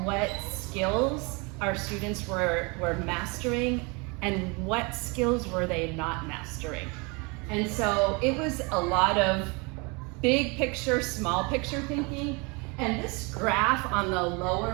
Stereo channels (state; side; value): quieter; left; 29.5 dB